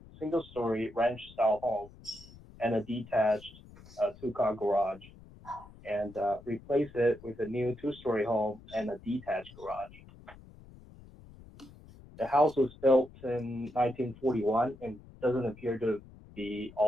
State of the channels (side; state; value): left; noise; rumble, 21 dB below the sound